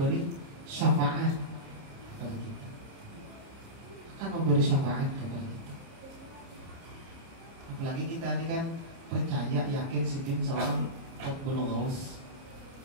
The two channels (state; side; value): late; left; 30 ms